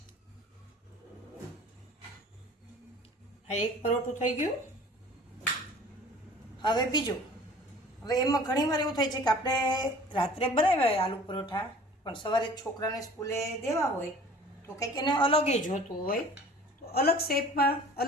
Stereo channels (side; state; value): both; normal; correlation 0.47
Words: આ એક પરોઠું થઈ ગયું। હવે બીજું। હવે એમાં ઘણીવાર એવું થાય છે કે આપણે રાત્રે બનાવ્યા હોય આલુ પરોઠા, પણ સવારે છોકરાને સ્કૂલે દેવા હોય તો કંઈક એને અલગ જોતું હોય, તો અલગ શેપમાં